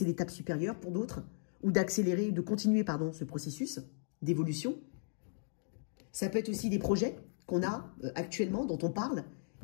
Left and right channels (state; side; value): silent; right; digital silence